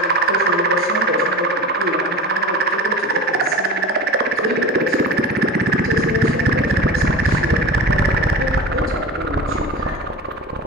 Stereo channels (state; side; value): normal; both; correlation 0.33